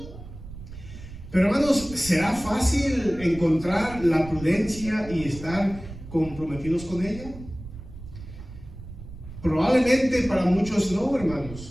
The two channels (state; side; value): noise; right; rumble, 14 dB below the sound